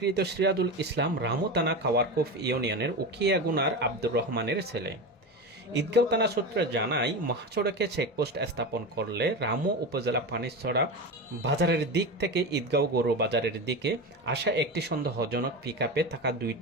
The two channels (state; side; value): normal; both; correlation 0.22